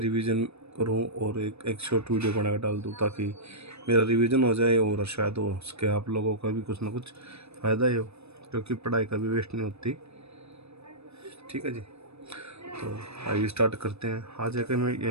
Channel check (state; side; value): late; left; 0.79 ms